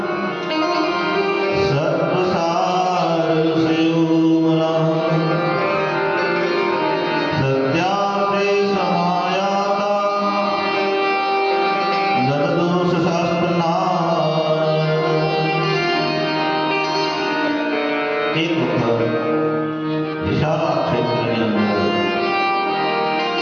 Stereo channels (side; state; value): both; identical; correlation 1.00